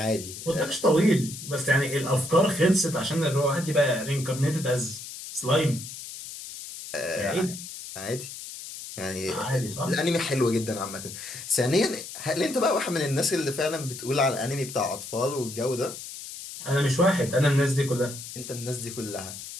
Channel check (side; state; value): left; noise; hiss, 11 dB below the sound